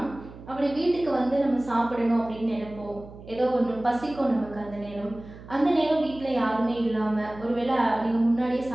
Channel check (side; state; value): right; noise; hum, 17 dB below the sound